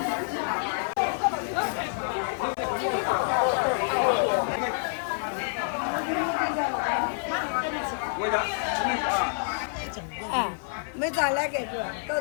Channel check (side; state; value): right; silent; 60 dB below the other